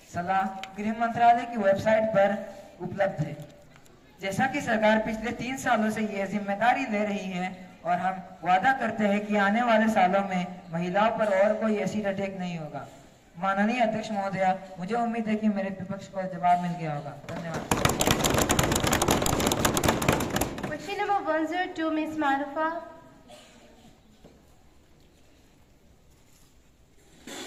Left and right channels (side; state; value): both; identical; correlation 1.00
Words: सलाह गृह मंत्रालय की वेबसाइट पर उपलब्ध है। जैसा कि सरकार पिछले 3 सालों से यह जिम्मेदारी ले रही है और हम वादा करते हैं कि आने वाले सालों में महिलाओं पर और कोई एसिड अटैक नहीं होगा। माननीय अध्यक्ष महोदया, मुझे उम्मीद है कि मेरे विपक्ष को जवाब मिल गया होगा। धन्यवाद। Question number 102, Ms. Marufa.